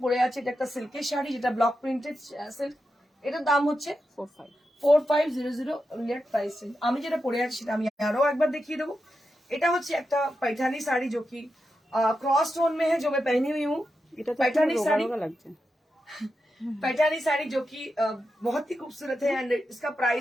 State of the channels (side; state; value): both; normal; correlation 0.88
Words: পরে আছে, এটা একটা সিল্কের শাড়ি, যেটা ব্লক প্রিন্টেড সিল্ক, এটার দাম হচ্ছে 4500 only at price range। আমি যেটা পরে আছি সেটা আমি আরো একবার দেখিয়ে দেবো। এটা হচ্ছে একটা पैठानी साड़ी जो कि क्रॉस टोन में है, जो मैं पहनी हुई हूँ। এটা তো पैठानी রোগা साड़ी, রোগা লাগছে। पैठानी साड़ी जो कि बहुत ही खूबसूरत है एंड इसका